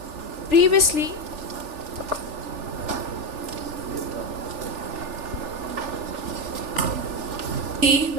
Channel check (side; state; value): left; late; 3.4 ms